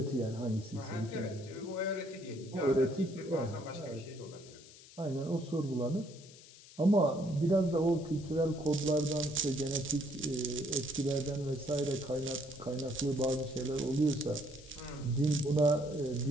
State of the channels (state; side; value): noise; left; hiss, 20 dB below the sound